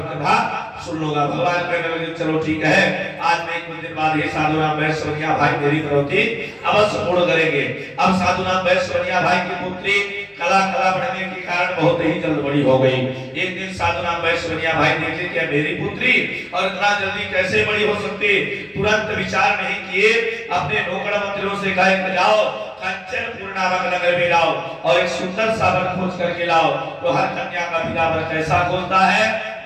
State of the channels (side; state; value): both; identical; correlation 1.00